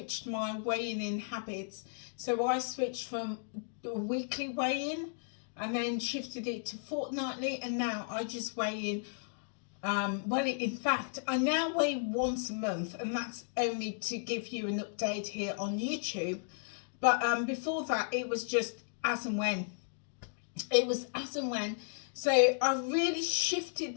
my weighing in habits. So I switched from weekly weigh-in and then shifted it to fortnightly, and now I just weigh in. Well, in fact, I now weigh once a month, and that's only to give you an update here on YouTube. But before that, it was just as and when. It was as and when. So I really shifted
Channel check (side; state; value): right; silent; digital silence